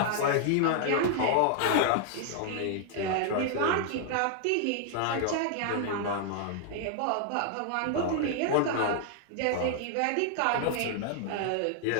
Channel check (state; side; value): different; both; correlation 0.00